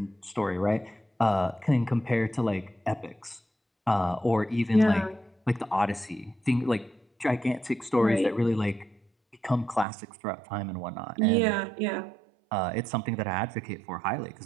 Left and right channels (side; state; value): left; drops out; at 9.9 s